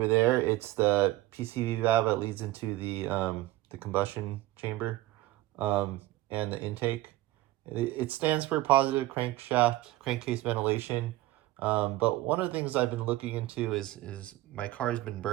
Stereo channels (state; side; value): quieter; left; 17.0 dB